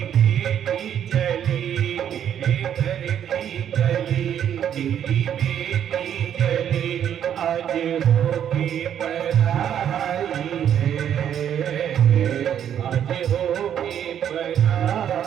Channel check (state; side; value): quieter; left; 9.5 dB